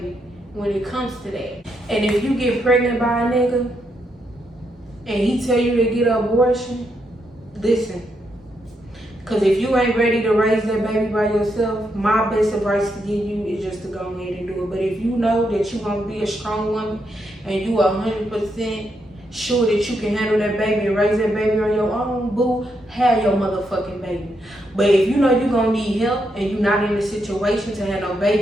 when it comes to that. And if you get pregnant by a nigga and he tell you to get an abortion, listen. Because if you ain't ready to raise that baby by yourself, my best advice to give you is just to go ahead and do it. But if you know that you're going to be a strong woman and you are 100% sure that you can handle that baby and raise that baby on your own, boo, have your motherfucking baby. But if you know you're going to need help and you're not in a situation to have no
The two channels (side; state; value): both; normal; correlation 0.80